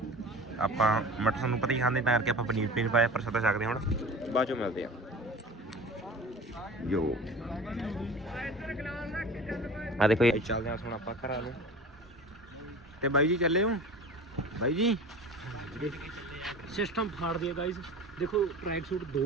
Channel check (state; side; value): normal; both; correlation 0.38